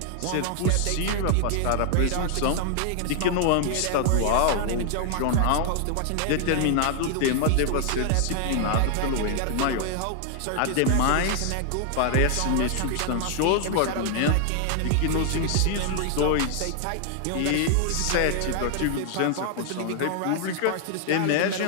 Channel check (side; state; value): both; different; correlation 0.00